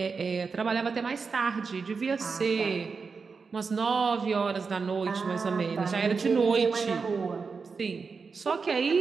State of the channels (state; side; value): quieter; left; 5.0 dB